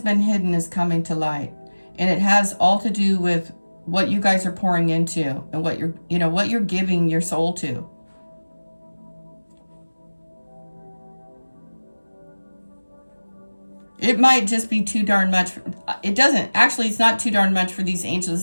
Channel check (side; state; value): both; inverted; correlation -1.00